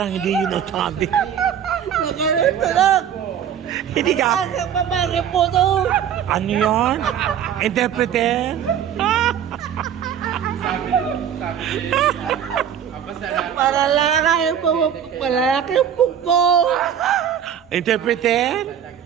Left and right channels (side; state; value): left; quieter; 9.0 dB